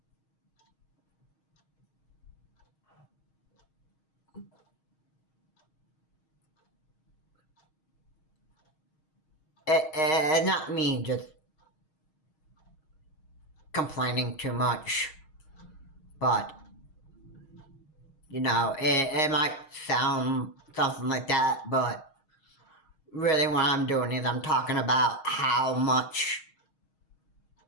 not me just complaining too much, but it might sound something like that, but really what I'm doing is I'm talking about how much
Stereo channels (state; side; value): late; right; 6.4 ms